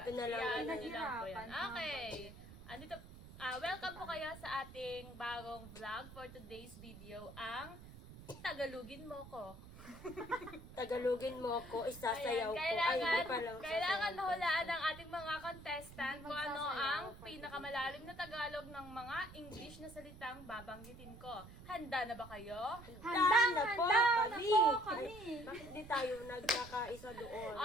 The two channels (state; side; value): noise; right; rumble, 16 dB below the sound